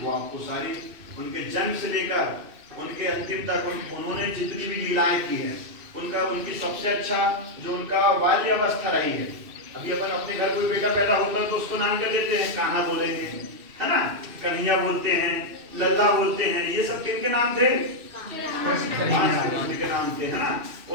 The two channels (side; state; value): left; late; 2.6 ms